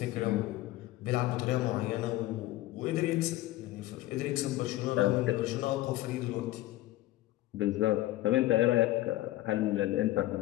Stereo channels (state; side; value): quieter; right; 16.4 dB